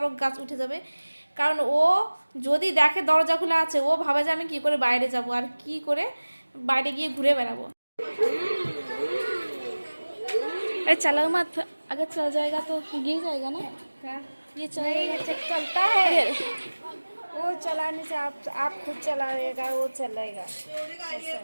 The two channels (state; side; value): inverted; both; correlation -1.00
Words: গাছ উঠে যাবে। কারণ ও যদি দেখে দরজা খোলা আছে ও ভাবে যে আমি কী করে বাইরে যাব আর কি করে বাইরে গিয়ে ঘুরে বেড়াবো। अरे चलो मत, अगर चल जाएगा तो गिर जाएगा ना। ये चलेगा चलता है वो चलाने से आप खुद चलाएगा वो चलेगा,